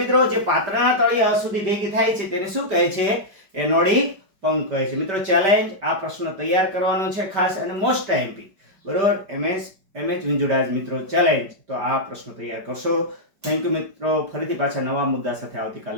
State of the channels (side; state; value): left; late; 5.2 ms